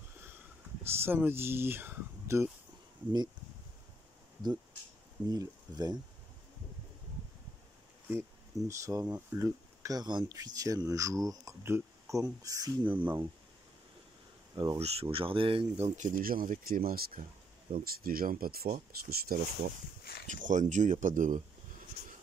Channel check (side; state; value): both; normal; correlation 0.73